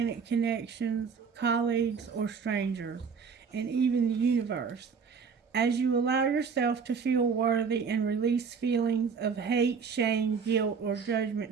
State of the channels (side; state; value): left; quieter; 5.8 dB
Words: connections, colleagues, or strangers, and even the universe. As you allow yourself to feel worthy and release feelings of hate, shame, guilt, or